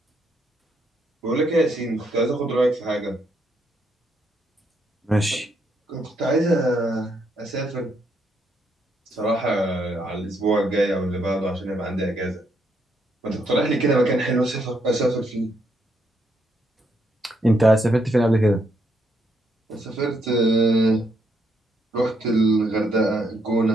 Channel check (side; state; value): both; normal; correlation 0.75